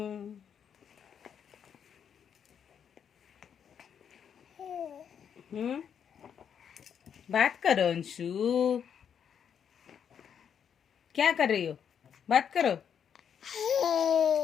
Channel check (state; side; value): quieter; right; 8.0 dB